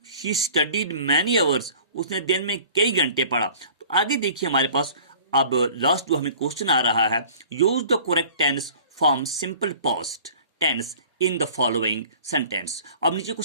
शी स्टडीड मैनी आवर्स, उसने दिन में कई घंटे पढ़ा। तो आगे देखिए हमारे पास अब लास्ट जो हमें क्वेश्चन आ रहा है, use the correct tense from simple past tense in the following sentence. अब नीचे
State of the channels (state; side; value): inverted; both; correlation -0.46